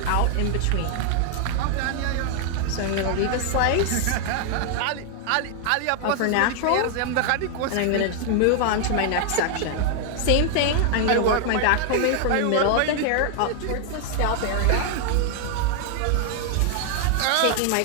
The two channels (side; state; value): both; different; correlation 0.00